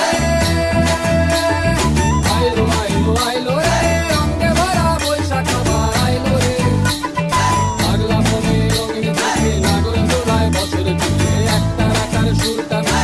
আইলো আইলো আইলো রে রঙে ভরা বৈশাখ আবার আইলো রে পাগলা মনে রঙিন চোখে নাগর দোলায় বছর জুড়ে একটা রাখার সুরটা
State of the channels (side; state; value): both; identical; correlation 1.00